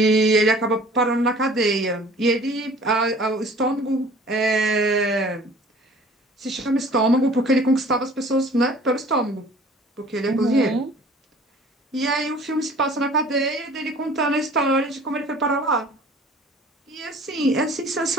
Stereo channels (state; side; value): normal; both; correlation 0.49